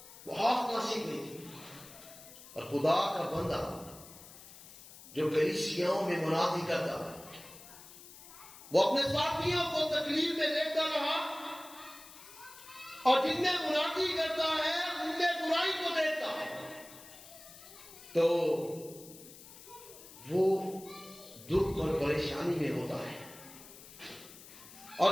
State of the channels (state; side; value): noise; left; hiss, 18 dB below the sound